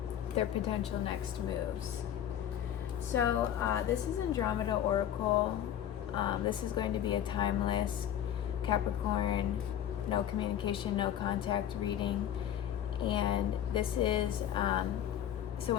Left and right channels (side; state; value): right; quieter; 10.6 dB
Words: their potential next moves. So this is Andromeda Oracle. This is going to be a timeless Capricorn, no communication, no contact reading. And this is, so